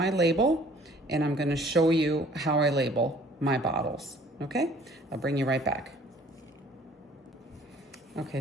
label and I'm gonna show you how I label my bottles, okay? I'll bring you right back. Okay,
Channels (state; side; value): normal; both; correlation 0.55